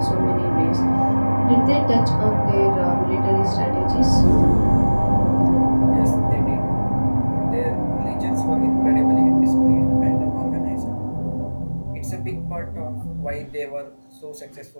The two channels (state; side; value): inverted; both; correlation -1.00